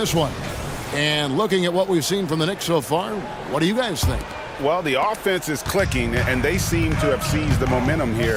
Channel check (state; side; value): identical; both; correlation 1.00